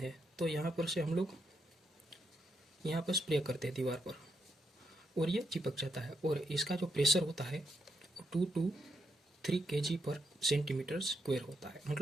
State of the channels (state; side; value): normal; both; correlation 0.80